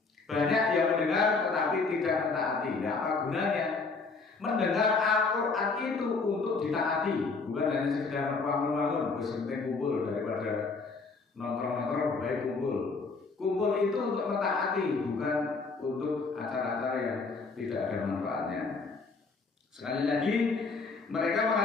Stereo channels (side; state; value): right; quieter; 4.2 dB